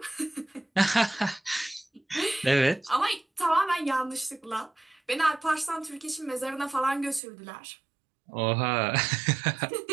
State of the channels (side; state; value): left; drops out; at 7.2 s